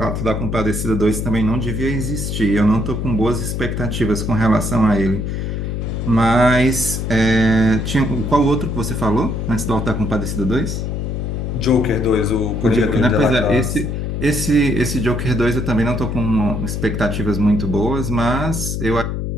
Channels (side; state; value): left; noise; hum, 3 dB below the sound